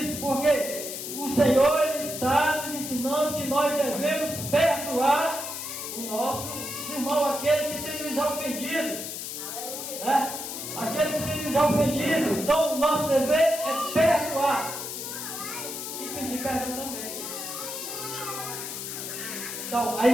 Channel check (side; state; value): left; noise; hiss, 6 dB below the sound